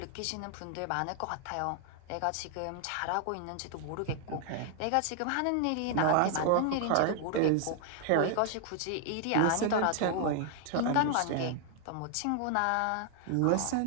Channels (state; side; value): different; both; correlation 0.00